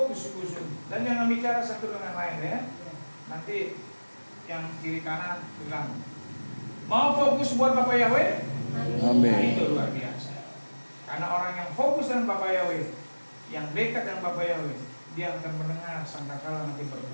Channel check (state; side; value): inverted; both; correlation -1.00